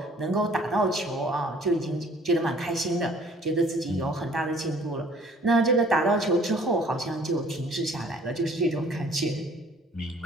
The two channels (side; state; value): both; normal; correlation 0.55